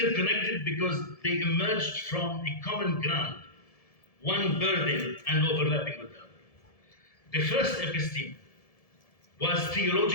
because they emerged from a common ground, one burden and overlapping with the other. The first episteme was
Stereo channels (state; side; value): late; right; 1.7 ms